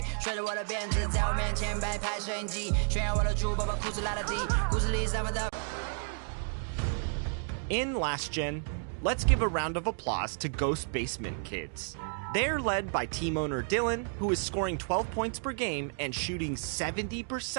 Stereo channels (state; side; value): silent; left; 57 dB below the other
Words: 甩着我的辫子，在我面前摆拍摄影机，炫耀我的珠宝，把裤子拉得低，故事里散发的。In Last Gen, let's give a round of applause to Ghost Basement Kids. They're led by team owner Dylan, who is scoring 12 points per game and shooting